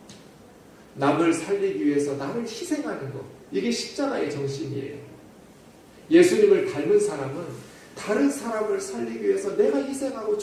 남을 살리기 위해서 나를 희생하는 것. 이게 십자가의 정신이에요. 예수님을 닮은 사람은 다른 사람을 살리기 위해서 내가 희생하고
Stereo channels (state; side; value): identical; both; correlation 1.00